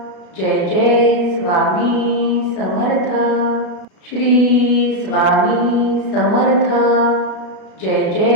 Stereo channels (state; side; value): late; right; 32 ms